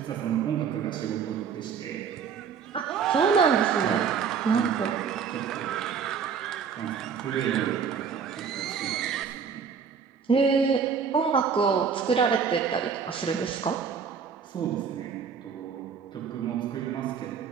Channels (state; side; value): quieter; left; 6.6 dB